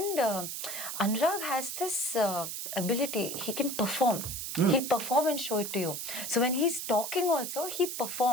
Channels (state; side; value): noise; right; hiss, 5 dB below the sound